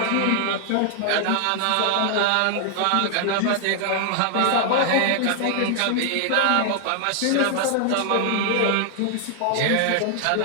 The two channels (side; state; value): both; different; correlation 0.00